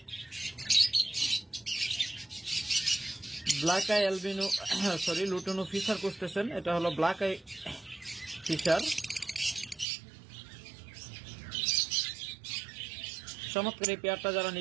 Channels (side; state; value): left; drops out; at 9.9 s